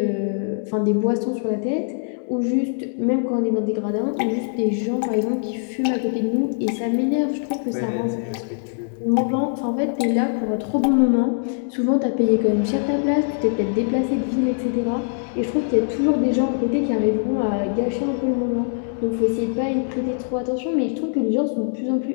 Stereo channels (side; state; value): right; silent; digital silence